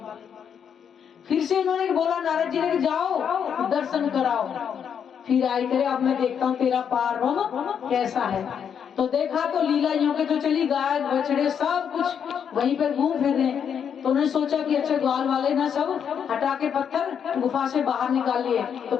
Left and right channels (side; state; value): right; quieter; 7.8 dB